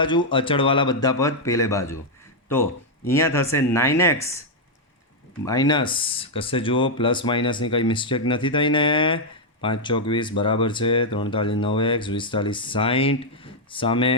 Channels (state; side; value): normal; both; correlation -0.02